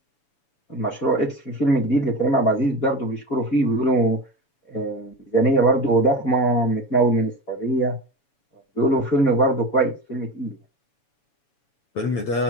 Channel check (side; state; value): right; late; 7.1 ms